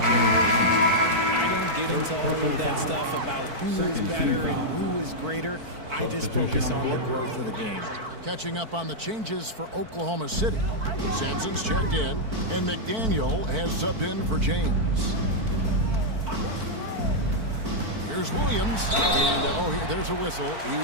generations. I don't get into all of that stuff about who is better and who is greater. I just focus on the growth of the game. Catching up on the changes for Oklahoma City. Sampson's checked in, and McDaniel has subbed in for James. Here's Williams, and there's a whistle. He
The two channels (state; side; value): late; left; 4.5 ms